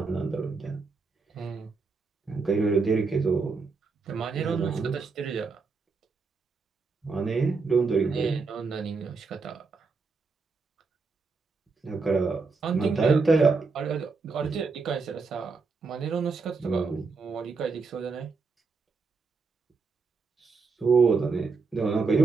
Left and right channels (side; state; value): left; quieter; 4.4 dB